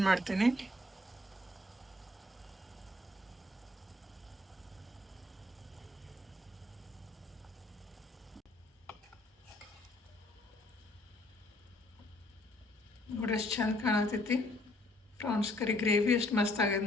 ಮಾಡ್ತೀನಿ. ನೋಡಿ ಎಷ್ಟು ಚಂದ ಕಾಣತೈತಿ. ಪ್ರಾನ್ಸ್ ಕರಿ ಗ್ರೇವಿ ಎಷ್ಟು ಮಸ್ತ್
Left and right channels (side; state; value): both; normal; correlation 0.64